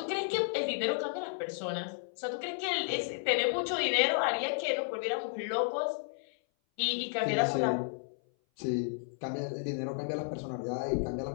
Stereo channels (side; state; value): right; silent; 56 dB below the other